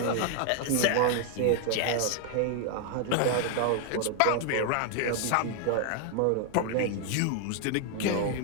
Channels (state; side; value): different; both; correlation 0.01